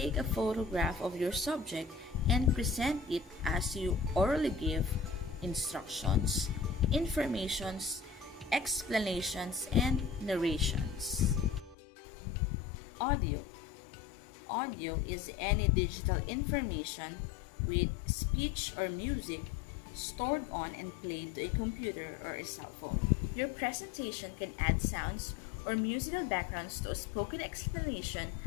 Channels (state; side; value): drops out; right; at 11.8 s